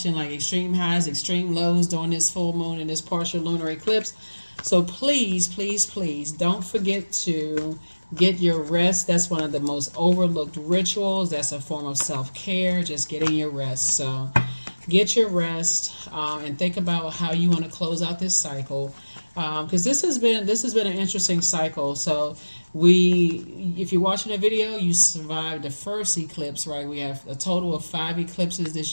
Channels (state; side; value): inverted; both; correlation -1.00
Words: like extreme highs, extreme lows during this full moon and this partial lunar eclipse. So please, please, please don't forget to get your rest. That's one of the most overlooked rituals. That's a form of self care, just getting your rest. So get your rest and think about how you want to close out this cycle because this has been an interesting cycle. So if you're watching a video, you survived the first eclipse, right? We have a total of 5 eclipses this